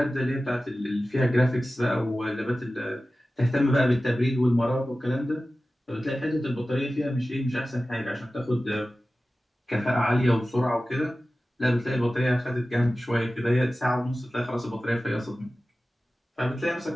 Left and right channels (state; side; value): normal; both; correlation 0.95